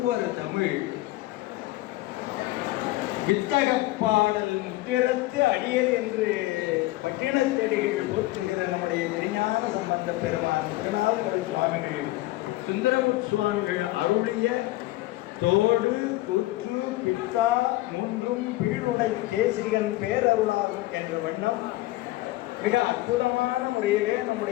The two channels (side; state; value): right; quieter; 18.2 dB